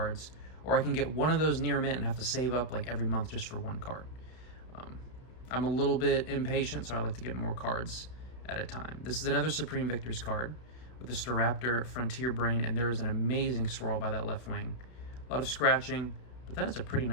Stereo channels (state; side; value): late; right; 31 ms